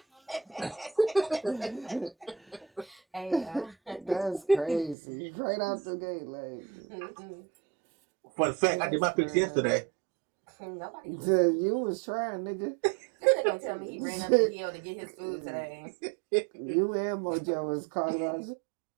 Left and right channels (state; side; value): drops out; left; at 5.0 s